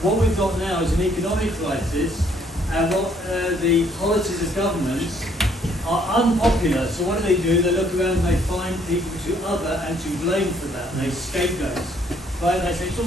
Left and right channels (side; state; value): both; normal; correlation 0.65